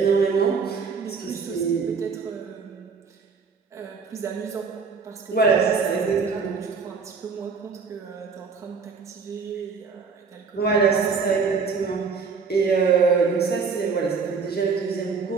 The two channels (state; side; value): quieter; left; 5.3 dB